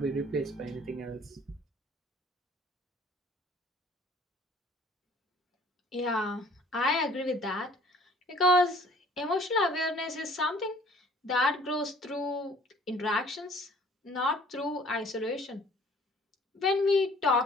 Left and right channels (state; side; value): normal; both; correlation 0.54